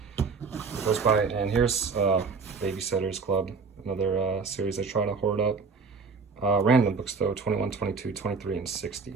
Goes by. And here's Babysitter's Club, another series I try to hoard up. Random books though, 21, 22, 23, and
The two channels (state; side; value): quieter; left; 4.9 dB